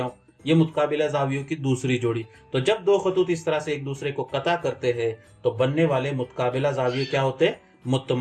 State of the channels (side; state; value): both; identical; correlation 1.00